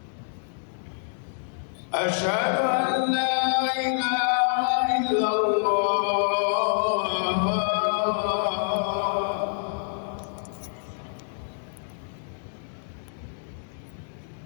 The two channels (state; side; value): silent; right; digital silence